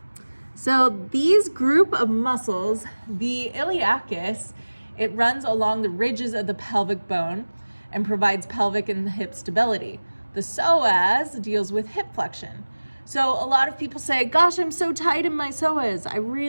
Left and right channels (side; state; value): both; inverted; correlation -1.00